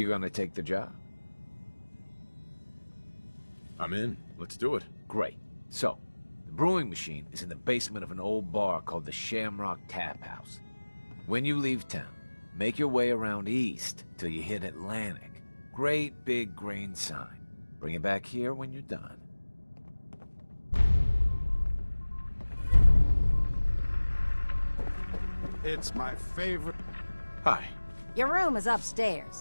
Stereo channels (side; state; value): both; inverted; correlation -1.00